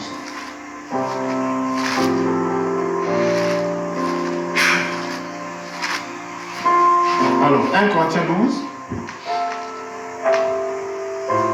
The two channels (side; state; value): both; identical; correlation 1.00